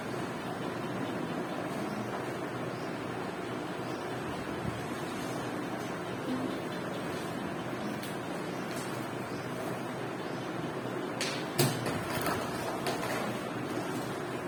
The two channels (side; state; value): both; identical; correlation 1.00